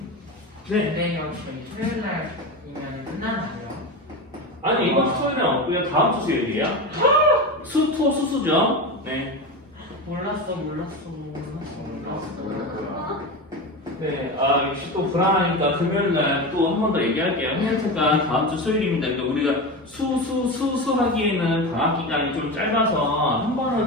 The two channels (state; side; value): normal; both; correlation 0.22